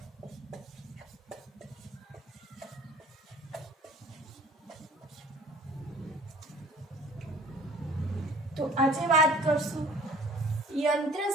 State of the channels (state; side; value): normal; both; correlation 0.50